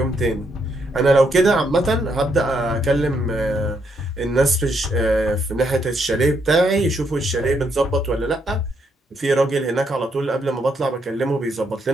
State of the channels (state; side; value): normal; both; correlation 0.75